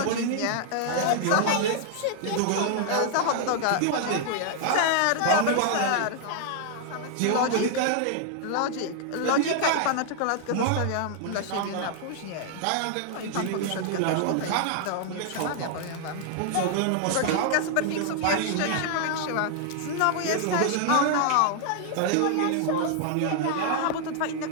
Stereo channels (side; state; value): both; different; correlation 0.00